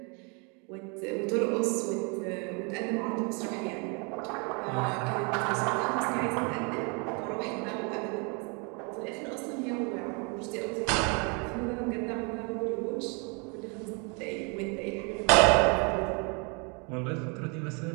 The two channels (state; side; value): quieter; left; 33.6 dB